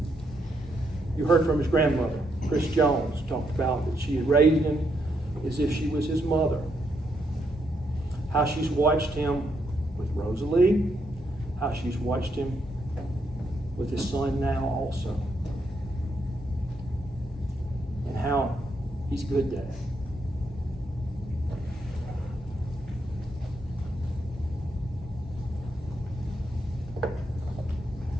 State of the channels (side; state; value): both; normal; correlation 0.78